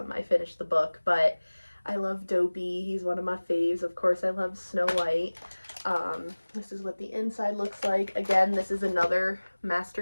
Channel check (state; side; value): inverted; both; correlation -1.00